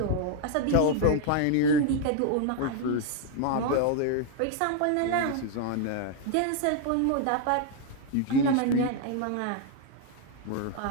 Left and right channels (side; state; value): both; different; correlation 0.00